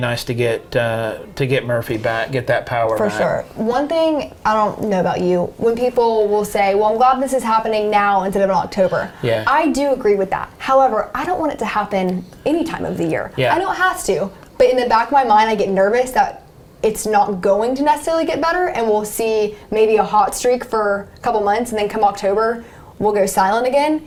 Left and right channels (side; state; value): both; identical; correlation 1.00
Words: to get Murphy back, get that power For back. sure. One thing, I don't know about you, when people will say, well, I'm glad this is happening now instead of in October. Yeah. I do agree with that. However, I don't want it to happen any time of the year. Yeah. I know it has to, but in the back of my mind, I get nervous that it's not going to necessarily get better, and we'll see maybe a hot streak for a couple months, and then come October, we'll go silent again.